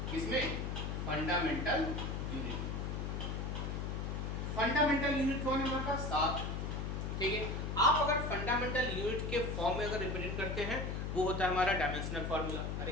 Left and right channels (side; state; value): left; noise; hum, 2 dB below the sound